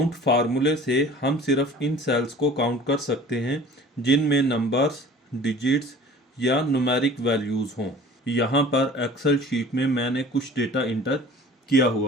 फार्मूले से हम सिर्फ इन सेल्स को काउंट कर सकते हैं जिनमें नंबर्स, डिजिट्स या न्यूमेरिक वैल्यूज़ हों। यहाँ पर एक्सेल शीट में मैंने कुछ डेटा इंटर किया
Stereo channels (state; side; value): normal; both; correlation 0.46